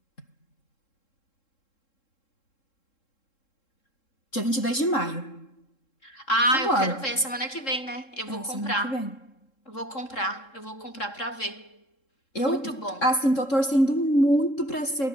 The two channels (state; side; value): late; right; 3.7 ms